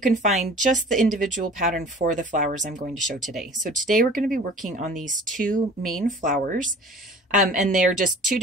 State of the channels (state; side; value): normal; both; correlation 0.45